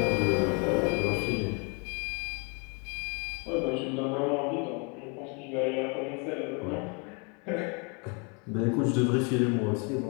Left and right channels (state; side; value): quieter; right; 34.3 dB